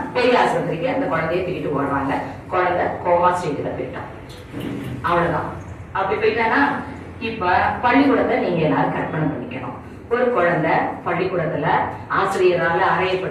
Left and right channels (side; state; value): both; identical; correlation 1.00